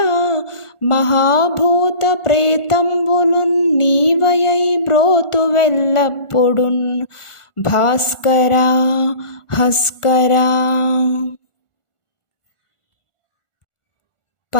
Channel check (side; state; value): right; late; 1.4 ms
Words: మహాభూత ప్రేతంబులున్ నీవయై బ్రోతువెల్లప్పుడున్ భాస్కరా హస్కరా.